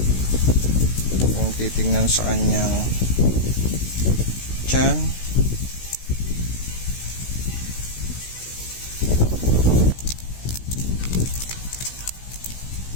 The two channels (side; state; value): right; late; 16 ms